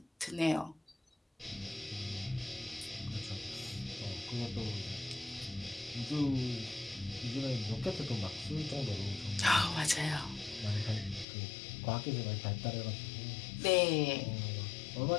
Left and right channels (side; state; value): right; drops out; at 11.2 s